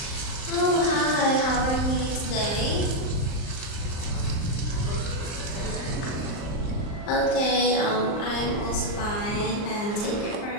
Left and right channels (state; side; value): late; right; 39 ms